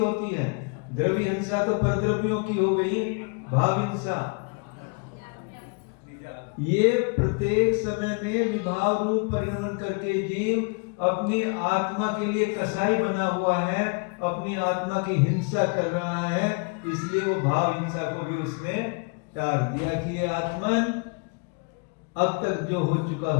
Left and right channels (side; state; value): right; quieter; 34.1 dB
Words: है? द्रव्य हिंसा तो परद्रव्यों की हो गई, भाव हिंसा ये प्रत्येक समय में विभाव रूप परिणमन करके जीव अपनी आत्मा के लिए कसाई बना हुआ है, अपनी आत्मा की हिंसा कर रहा है। इसलिए वो भाव हिंसा को भी उसने टाल दिया कि ये आत्मन अब तक जो हो चुका,